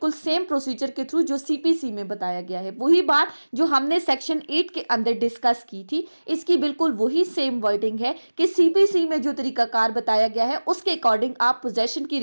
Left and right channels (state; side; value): inverted; both; correlation -1.00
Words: सेम प्रोसीजर के थ्रू जो सीपीसी में बताया गया है। वही बात जो हमने सेक्शन 8 के अंदर डिस्कस की थी, इसकी बिल्कुल वही सेम वर्डिंग है कि सीपीसी में जो तरीकाकार बताया गया है उसके अकॉर्डिंग आप पोजेशन की